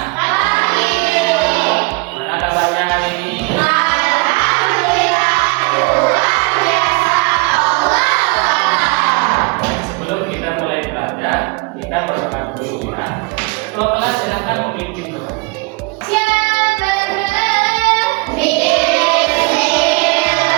Mana kabarnya hari ini? Sebelum kita mulai belajar, kita berdoa dulu ya. Ketua kelas silakan memimpin doa.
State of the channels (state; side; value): quieter; left; 28.4 dB